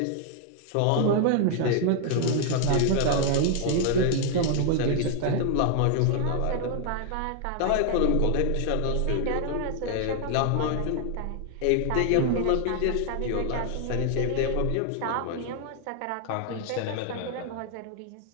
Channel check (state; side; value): different; both; correlation 0.00